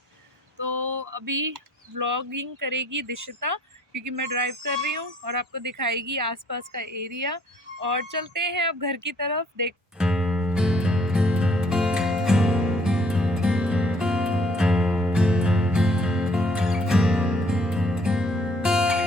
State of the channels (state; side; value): normal; both; correlation 0.62